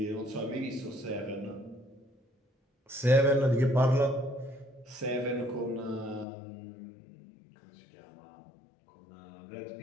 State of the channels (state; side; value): drops out; right; at 6.2 s